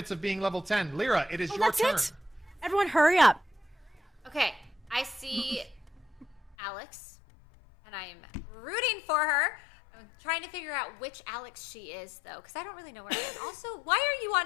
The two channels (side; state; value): right; drops out; at 6.6 s